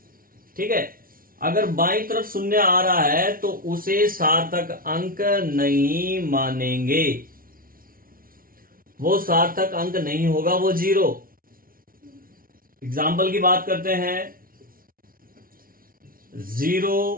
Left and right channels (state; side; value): late; left; 0.42 ms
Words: ठीक है, अगर बाईं तरफ शून्य आ रहा है तो उसे सार्थक अंक नहीं मानेंगे, वो सार्थक अंक नहीं होगा, वो जीरो। एग्जाम्पल की बात करते हैं,